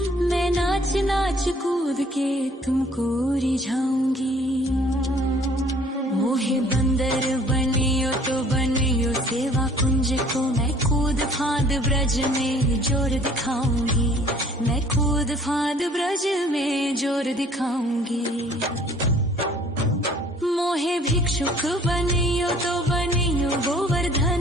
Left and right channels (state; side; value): normal; both; correlation 0.55